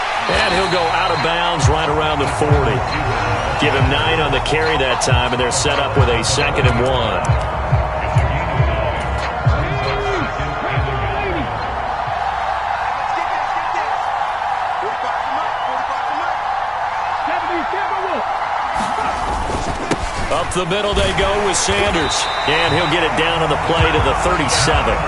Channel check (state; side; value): identical; both; correlation 1.00